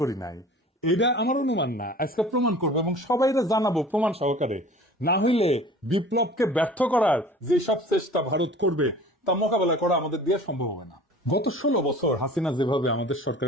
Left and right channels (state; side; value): normal; both; correlation 0.44